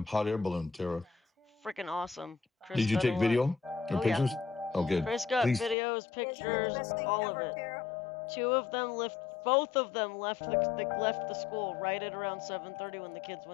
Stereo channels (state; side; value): drops out; right; at 5.8 s